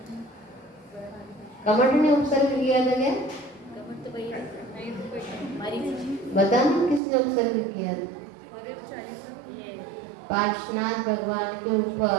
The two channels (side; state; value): left; drops out; at 7.0 s